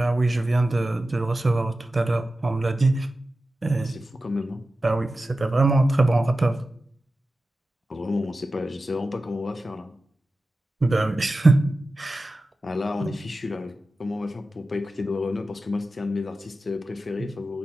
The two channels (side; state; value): both; normal; correlation 0.94